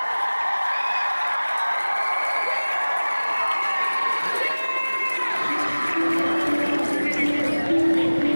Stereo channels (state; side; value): inverted; both; correlation -1.00